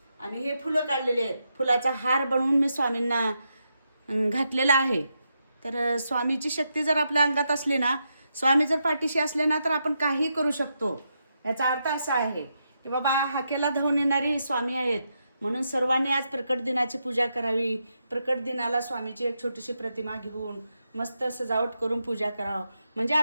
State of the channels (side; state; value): both; inverted; correlation -0.83